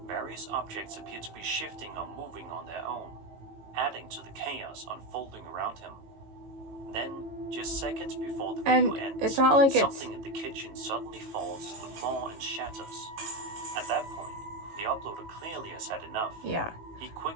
various objects appear to be shifting or moving on their own, adding to the chaos unfolding around him. Then, just seconds before the video ends, it's not like something in the kitchen suddenly falls to the floor and shatters. At that point, the uploader clearly has had enough. Yeah. He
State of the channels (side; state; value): left; late; 18 ms